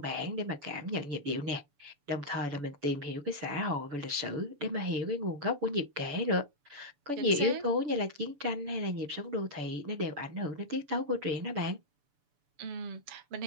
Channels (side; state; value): left; late; 6.9 ms